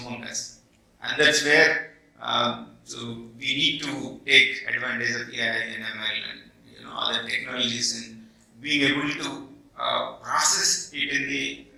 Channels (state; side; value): identical; both; correlation 1.00